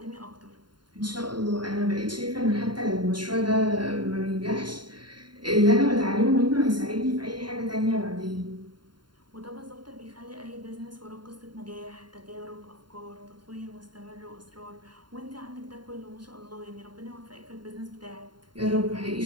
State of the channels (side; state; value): left; late; 0.71 ms